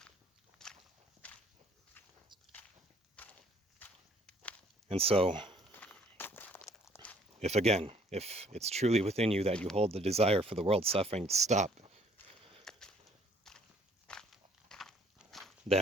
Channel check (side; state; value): both; normal; correlation 0.61